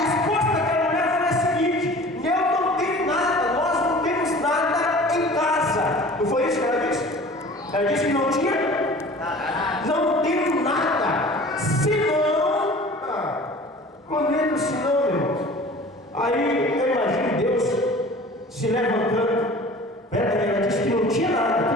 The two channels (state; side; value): normal; both; correlation 0.44